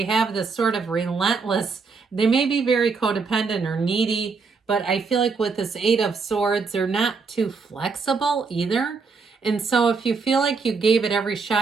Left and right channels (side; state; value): left; quieter; 4.8 dB